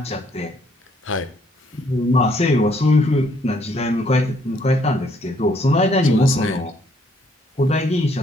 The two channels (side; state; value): both; normal; correlation 0.67